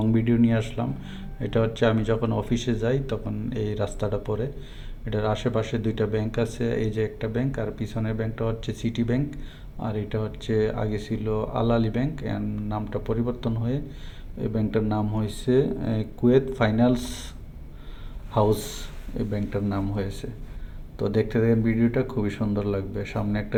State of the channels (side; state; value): both; identical; correlation 1.00